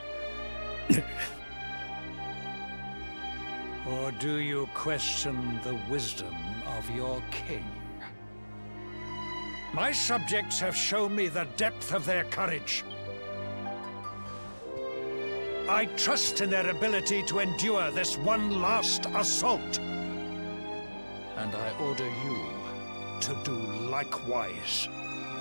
Or do you question the wisdom of your king? My subjects have shown me the depth of their courage. I trust in their ability to endure this one last assault. And I order you to do likewise.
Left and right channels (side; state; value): both; inverted; correlation -1.00